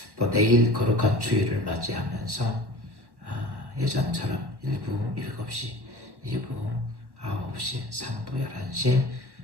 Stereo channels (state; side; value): late; left; 1.4 ms